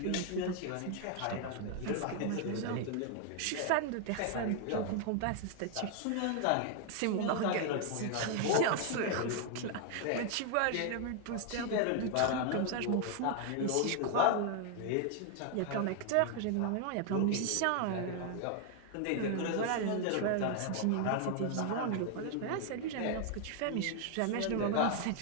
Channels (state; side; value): different; both; correlation 0.00